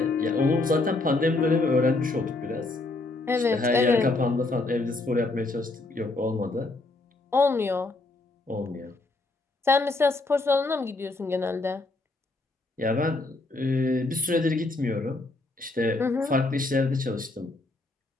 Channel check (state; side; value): quieter; right; 3.2 dB